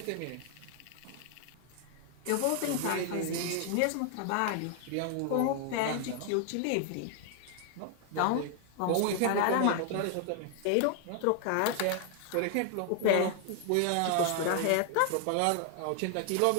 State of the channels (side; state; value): both; different; correlation 0.00